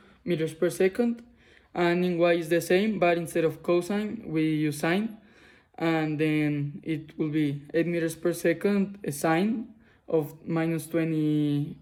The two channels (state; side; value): identical; both; correlation 1.00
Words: meters per second, and in y is the same, but instead of cosine we use sine, and then it will be 8 meters per second, a sine of minus 20